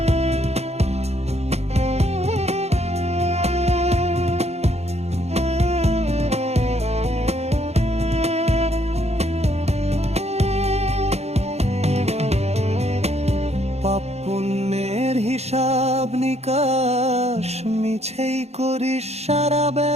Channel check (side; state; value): left; late; 0.31 ms